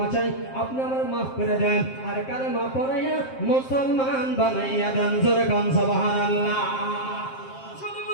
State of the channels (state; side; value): late; right; 7.6 ms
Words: চাই, আপনি আমার মাফ করে দেন। আর কারে মাফ করাইয়া মুসলমান বানাইয়া দেন। জোরে কোন সুবহানাল্লাহ। শুধু